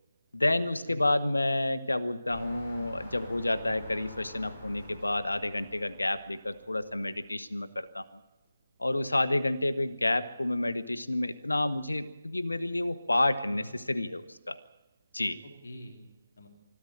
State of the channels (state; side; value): inverted; both; correlation -0.97